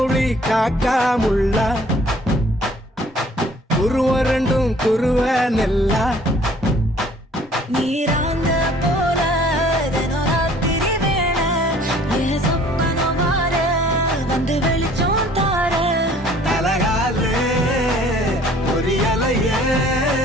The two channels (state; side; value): normal; both; correlation 0.55